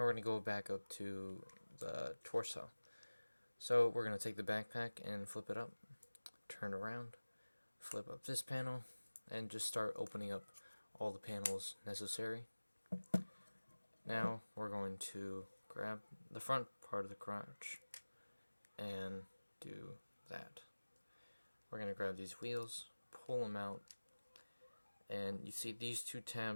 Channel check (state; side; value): inverted; both; correlation -1.00